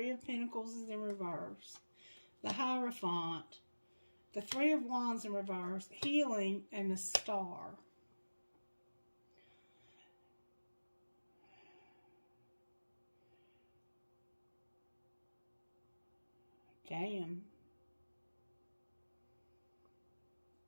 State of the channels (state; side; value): inverted; both; correlation -1.00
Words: of Pentacles is in reverse. The Hierophant. The Three of Wands in reverse. Healing and the Star. Damn.